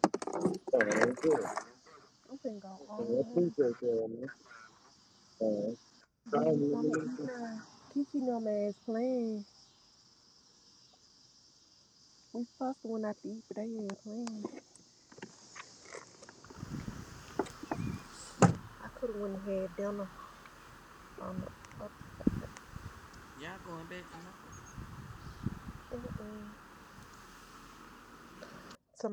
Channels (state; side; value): identical; both; correlation 1.00